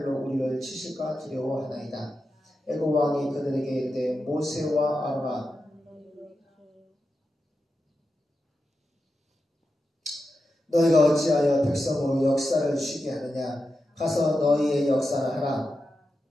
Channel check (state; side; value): normal; both; correlation 0.89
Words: 우리를 치실까 두려워하나이다. 애굽 왕이 그들에게 이르되 모세와 아론아 너희가 어찌하여 백성으로 역사를 쉬게 하느냐. 가서 너희의 역사를 하라.